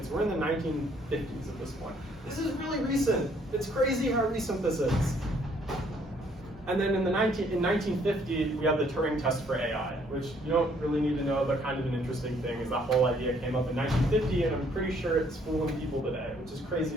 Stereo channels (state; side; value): normal; both; correlation 0.65